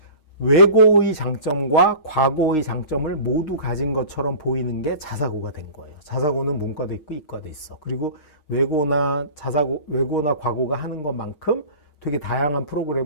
외고의 장점과 과고의 장점을 모두 가진 것처럼 보이는 게 자사고가 된 거예요. 자사고는 문과도 있고 이과도 있어. 그리고 외고나 과고가 하는 것만큼 되게 다양한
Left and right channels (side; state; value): right; late; 6.4 ms